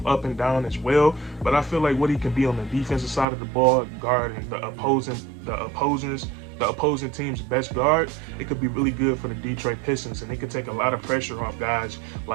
up and down as well. But I feel like what he can be on the defensive side of the ball, guarding the opposing team's best guard, it could be really good for the Detroit Pistons, and it could take a lot of pressure off guys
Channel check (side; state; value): left; drops out; at 3.2 s